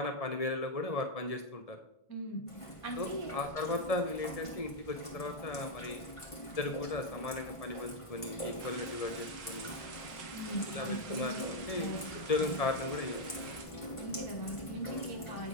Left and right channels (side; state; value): right; late; 1.5 ms